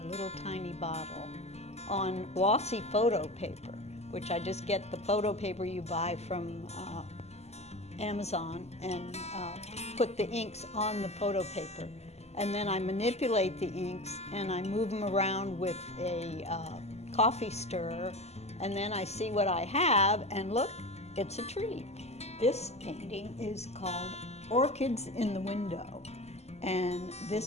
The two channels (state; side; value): late; right; 0.31 ms